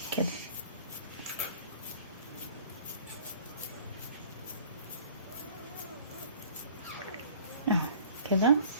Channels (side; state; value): both; inverted; correlation -0.50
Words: كده. اهو كده